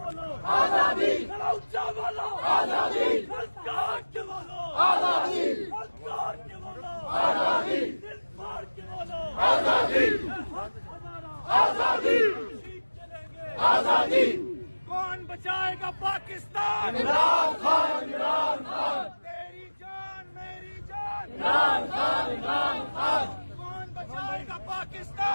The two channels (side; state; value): both; inverted; correlation -1.00